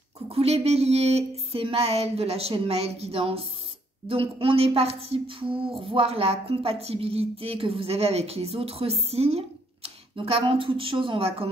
Coucou les béliers, c'est Maëlle de la chaîne Maëlle Guidance. Donc on est parti pour voir la compatibilité que vous avez avec les autres signes. Donc avant toute chose, on va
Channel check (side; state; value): both; normal; correlation 0.69